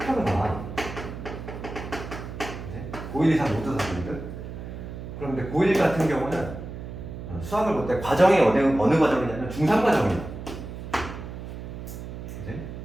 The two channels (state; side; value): noise; right; hum, 9 dB below the sound